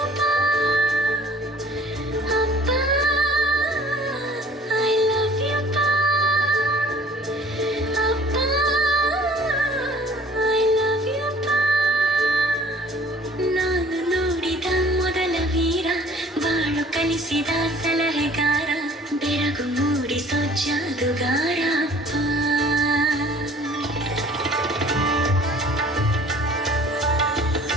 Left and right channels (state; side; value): normal; both; correlation 0.52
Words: ಪಾ, ಅಪ್ಪ ಐ ಲವ್ ಯು ಪಾ, ಅಪ್ಪ ಐ ಲವ್ ಯು ಪಾ. ನಾನು ನೋಡಿದ ಮೊದಲ ವೀರ, ಬಾಳು ಕಲಿಸಿದ ಸಲಹೆಗಾರ, ಬೆಳಗು ಮೂಡಿಸೋ ಜಾದು